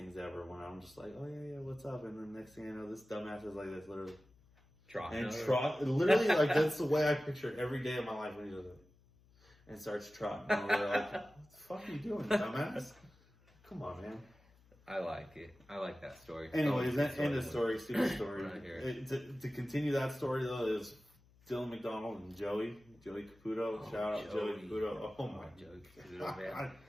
ever. When I'm just like, oh yeah, what's up? And then next thing I know, this dumbass is like this, literally literally like that's the way I picture every day of my life when he does it and starts trotting. And we're like, what the fuck are you doing, dumbass? Come on, man. I like it. I like that story. Anyways, end of story. Stupid story. Right here. To continue that story though is Dylan McDonald and Joey Caputo. Shout out Joey Caputo. Oh my Joey Caputo, man.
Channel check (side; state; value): left; noise; hum, 29 dB below the sound